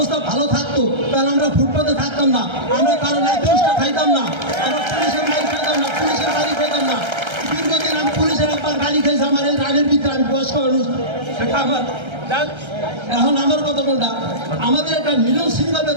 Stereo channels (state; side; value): late; left; 1.3 ms